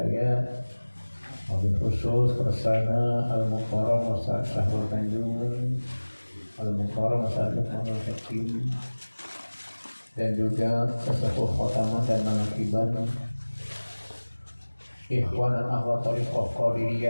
wabil khusus Kersana Al-Mukarram Ustaz Syahrul Tanjung, Al-Mukarram Ustaz Lukmanul Hakim, dan juga sesepuh khotamah dan manaqiban Ikhwan dan Akhwat Tariqah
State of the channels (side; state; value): both; inverted; correlation -1.00